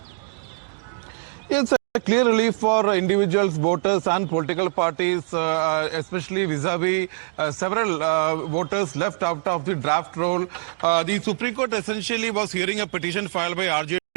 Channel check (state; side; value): silent; left; digital silence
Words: It's a clear relief for individuals, voters and political parties, especially vis-a-vis several voters left out of the draft roll. The Supreme Court essentially was hearing a petition filed by RJD,